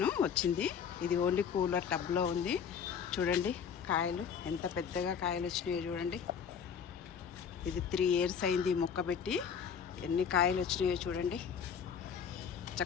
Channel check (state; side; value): quieter; right; 7.2 dB